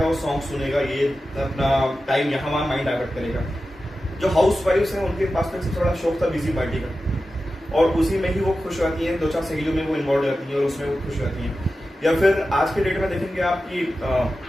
वो सॉन्ग सुनेगा, ये अपना टाइम यहाँ वहाँ माइंड डाइवर्ट करेगा। जो हाउस वाइफ्स हैं उनके पास में सबसे बड़ा शौक था बिजी पार्टी का, और उसी में ही वो खुश रहती हैं, 2-4 सहेलियों में वो इन्वॉल्व रहती हैं और उसमें वो खुश रहती हैं। या फिर आज के डेट में देखेंगे आप कि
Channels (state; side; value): normal; both; correlation 0.93